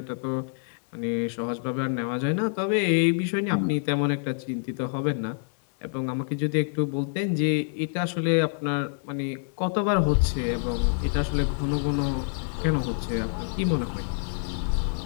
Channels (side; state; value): right; silent; digital silence